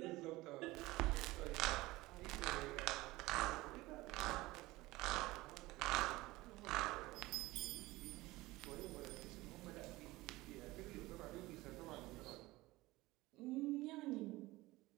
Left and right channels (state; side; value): quieter; left; 19.6 dB